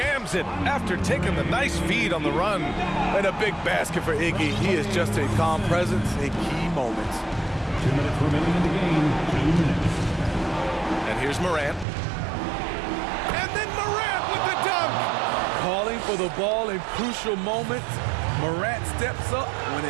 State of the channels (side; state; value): left; drops out; at 11.9 s